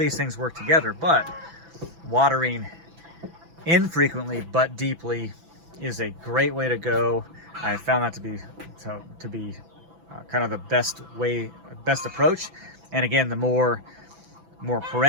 things work together, but watering infrequently but deeply is a great way to go. I found that to be kind of the best approach. And again, the more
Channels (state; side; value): late; left; 6.0 ms